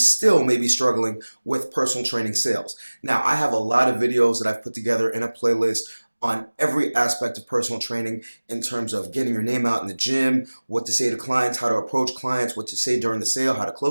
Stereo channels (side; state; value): both; inverted; correlation -1.00